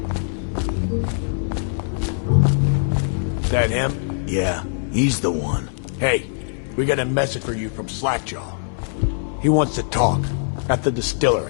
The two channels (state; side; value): silent; right; digital silence